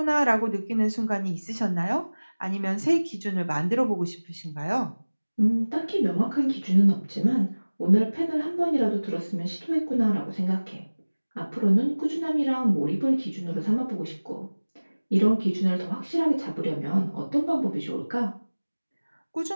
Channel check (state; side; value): inverted; both; correlation -1.00